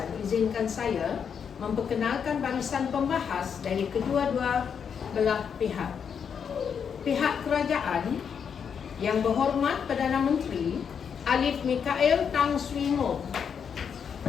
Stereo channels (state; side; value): quieter; right; 7.1 dB